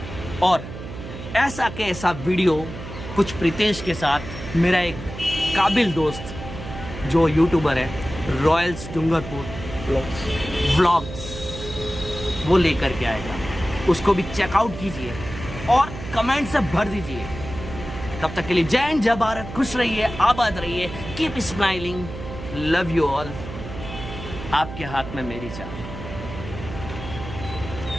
और ऐसा के ऐसा वीडियो कुछ प्रीतेश के साथ मेरा एक काबिल दोस्त जो यूट्यूबर है रॉयल्स डूंगरपुर व्लॉग्स, वो लेकर के आएगा। उसको भी चेकआउट कीजिए और कमेंट से भर दीजिए। तब तक के लिए जय हिंद, जय भारत, खुश रहिए, आबाद रहिए, keep smiling, love you all. आपके हाथ में मेरी चाह।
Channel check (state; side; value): noise; right; hum, 10 dB below the sound